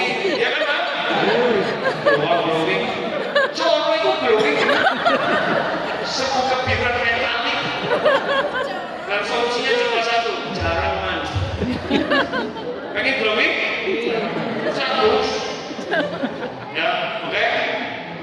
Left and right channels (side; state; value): both; identical; correlation 1.00